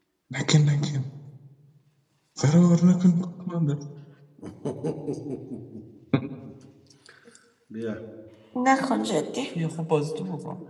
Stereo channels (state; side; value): identical; both; correlation 1.00